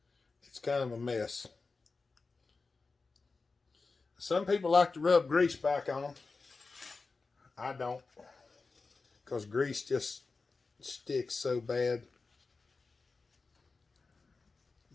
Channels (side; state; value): right; quieter; 4.1 dB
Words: It's kind of a mess. Some people like to rub grease back on them. I don't, because grease just sticks so bad.